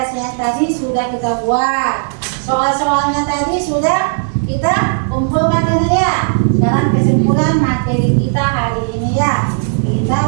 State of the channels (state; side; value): silent; left; 63 dB below the other